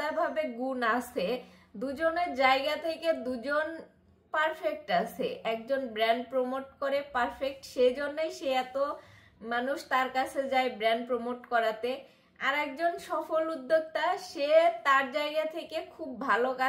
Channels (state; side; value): identical; both; correlation 1.00